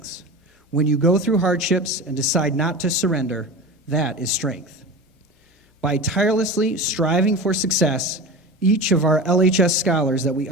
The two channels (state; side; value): normal; both; correlation 0.30